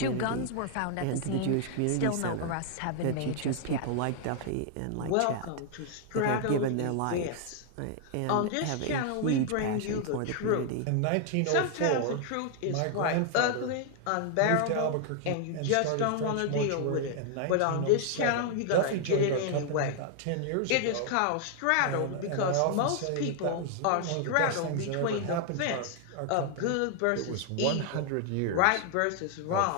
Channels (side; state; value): both; different; correlation 0.00